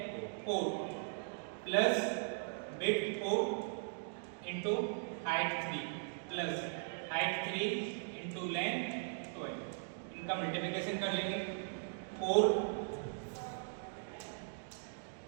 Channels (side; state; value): left; silent; digital silence